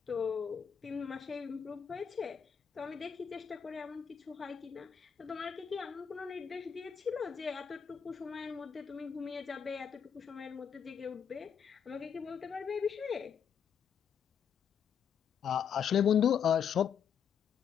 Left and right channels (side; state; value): right; quieter; 7.6 dB